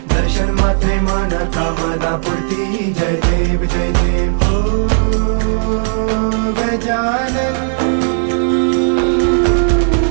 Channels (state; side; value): silent; left; digital silence